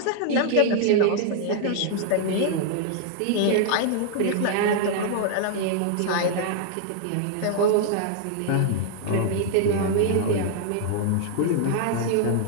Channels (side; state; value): both; different; correlation 0.00